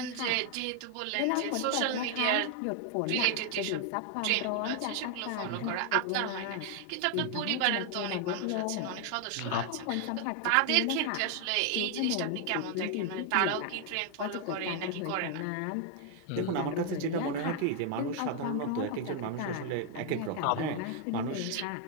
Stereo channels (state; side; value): different; both; correlation 0.00